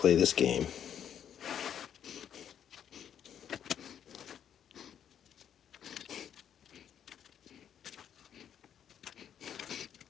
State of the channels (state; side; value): quieter; right; 9.2 dB